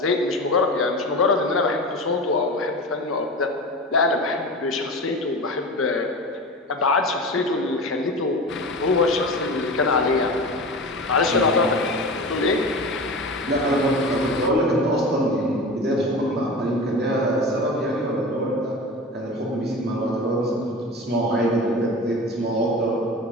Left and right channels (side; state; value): both; normal; correlation 0.31